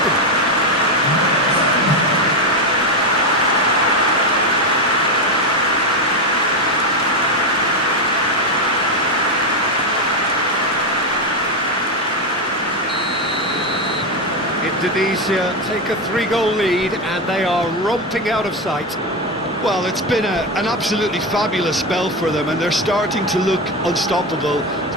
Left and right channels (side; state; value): both; normal; correlation 0.11